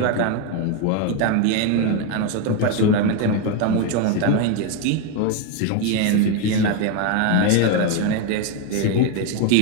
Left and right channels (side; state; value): both; different; correlation 0.02